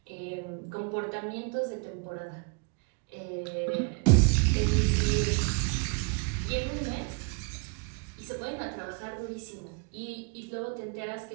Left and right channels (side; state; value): left; quieter; 32.8 dB